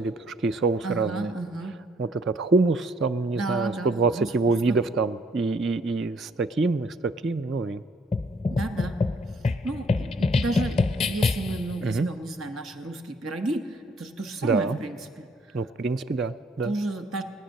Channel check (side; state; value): both; normal; correlation 0.64